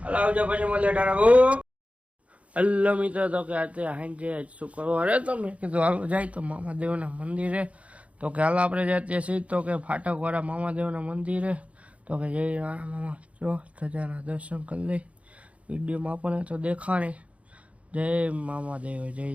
હાલ આવજો પછી મળીએ. ટાટા. હલો મિત્રો, તો કે અત્યારે હાંજે શું કરવા અરે તમે કીધું હાલો જાય તો મામાદેવના મંદિરે. તો કે હાલ આપણે જઈએ છીએ તો કે ફાટકવાળા મામાદેવના મંદિરે. તો કે જય રાણા મામા જો ધજાના દર્શન કરી લઈ. વિડીયોમાં આપણને તો દેખાણી. જય મામાદેવ, જય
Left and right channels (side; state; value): left; late; 0.064 ms